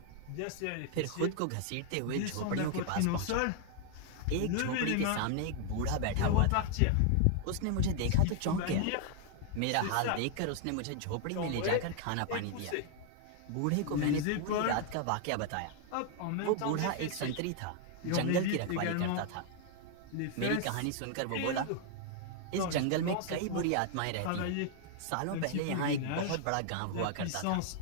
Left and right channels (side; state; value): both; different; correlation 0.00